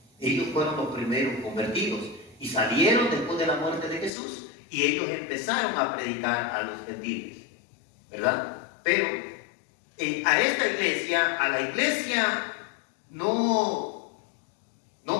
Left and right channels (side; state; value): right; drops out; at 4.1 s